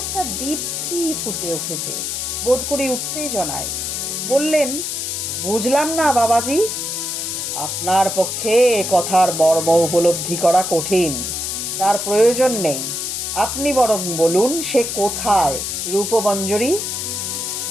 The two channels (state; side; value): noise; left; hiss, 3 dB below the sound